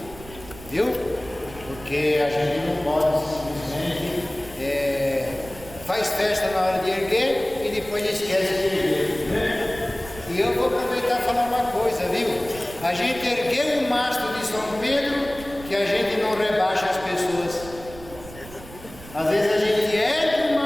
Viu? Porque a gente não pode simplesmente faz festa na hora de erguer e depois esquece de erguer, né? E eu vou aproveitar e falar uma coisa, viu? A gente ergueu o mastro de São Pedro, que a gente não rebaixa as pessoas. Às vezes a gente ergue o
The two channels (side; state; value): right; noise; rumble, 17 dB below the sound